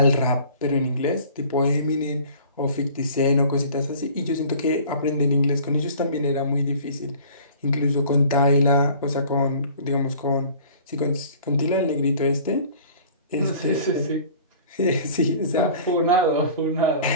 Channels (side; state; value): both; inverted; correlation -0.47